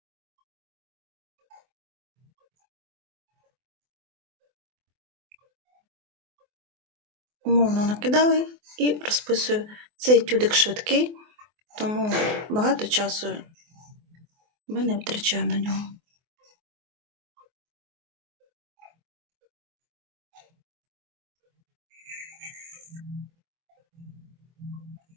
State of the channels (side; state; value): left; late; 24 ms